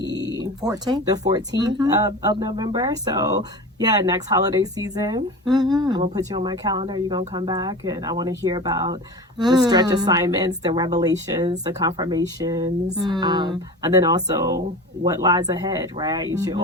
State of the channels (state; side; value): normal; both; correlation 0.32